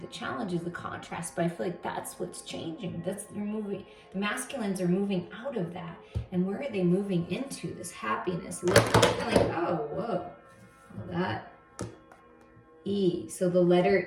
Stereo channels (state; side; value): identical; both; correlation 1.00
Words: challenges, the contrast, but I feel like that's what's changing. You're moving. The masculines are moving out of that. And where are they moving into? This happiness. Like, oh, whoa. Well, that E. So the